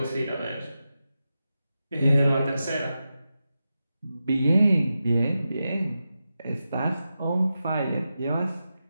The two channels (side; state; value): both; inverted; correlation -0.90